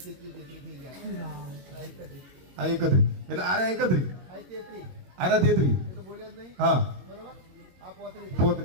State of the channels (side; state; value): left; late; 22 ms